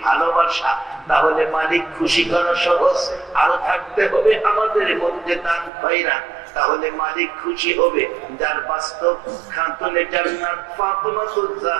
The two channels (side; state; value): left; drops out; at 5.7 s